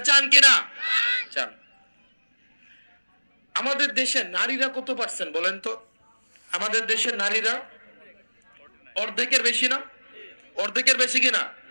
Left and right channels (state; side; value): inverted; both; correlation -1.00